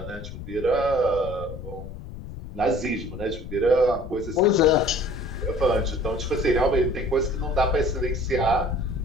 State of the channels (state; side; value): noise; left; rumble, 11 dB below the sound